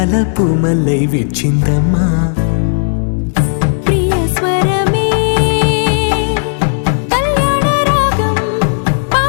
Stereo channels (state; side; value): silent; right; digital silence